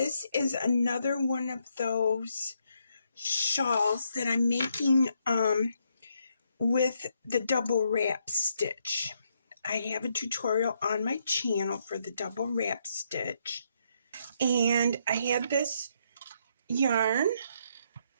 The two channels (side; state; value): both; inverted; correlation -0.75